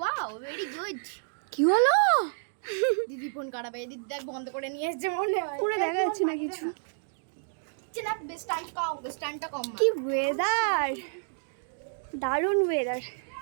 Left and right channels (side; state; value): left; silent; digital silence